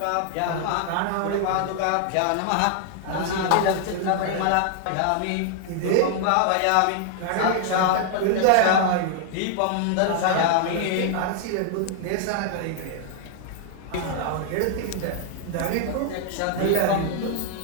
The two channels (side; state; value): both; different; correlation 0.00